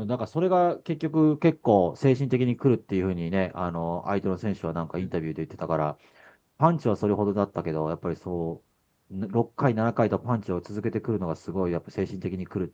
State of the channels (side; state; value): both; identical; correlation 1.00